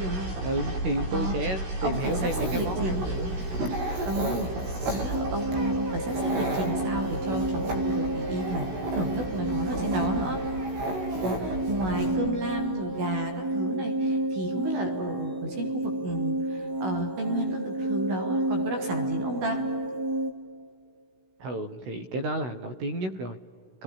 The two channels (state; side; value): late; left; 16 ms